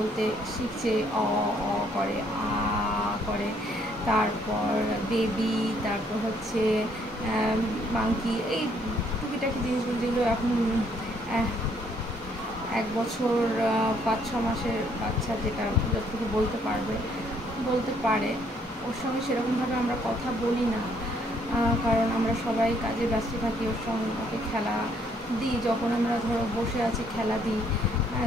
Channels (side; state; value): both; normal; correlation 0.67